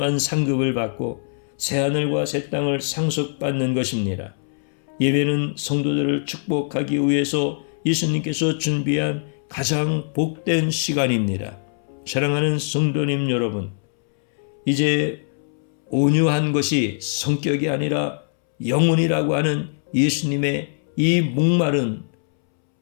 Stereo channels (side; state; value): right; silent; 64 dB below the other